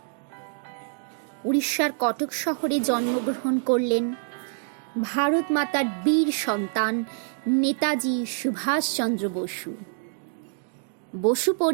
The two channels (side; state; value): left; silent; digital silence